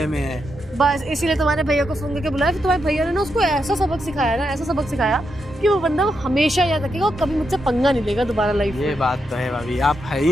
में है। बस इसीलिए तुम्हारे भैया को फोन करके बुलाया, फिर तुम्हारे भैया ने ना उसको ऐसा सबक सिखाया ना, ऐसा सबक सिखाया कि वो बंदा हमेशा याद रखेगा और कभी मुझसे पंगा नहीं लेगा दोबारा लाइफ ये में। बात तो है भाभी, आप है ही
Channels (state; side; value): normal; both; correlation 0.83